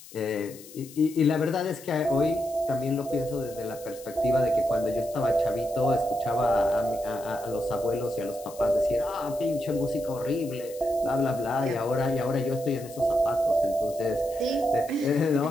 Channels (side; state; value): left; noise; hiss, 19 dB below the sound